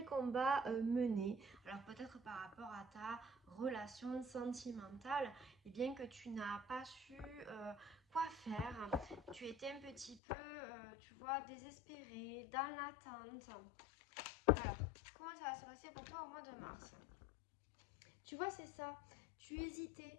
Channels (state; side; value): drops out; right; at 10.2 s